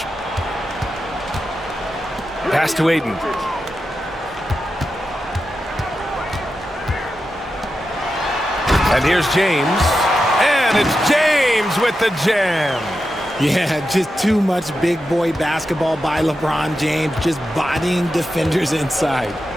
Pass to Aiden. And here's James. And it's James with the jam. Yeah, just too much big boy basketball by LeBron James, just bodying defenders inside.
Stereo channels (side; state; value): both; normal; correlation 0.90